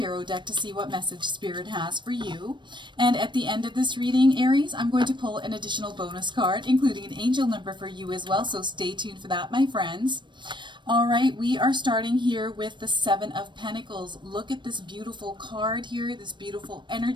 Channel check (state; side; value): late; left; 0.22 ms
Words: deck to see what message Spirit has for you. And at the end of this reading, Aries, I'm going to pull an additional bonus card, including an angel number for you as well. So stay tuned for that, my friends. All right, we are starting here with the 7 of Pentacles. Look at this beautiful card here, this beautiful